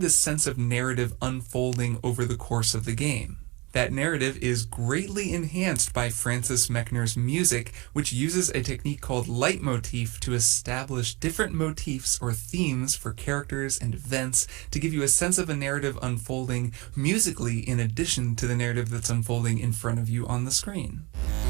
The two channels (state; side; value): quieter; left; 26.1 dB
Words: this sense of narrative unfolding over the course of the game. That narrative is greatly enhanced by Francis Mechner's music, which uses a technique called leitmotif to establish different motifs or themes for characters and events to give you a sense of a narrative unfolding musically in addition to the narrative that's unfolding in front of you on the screen.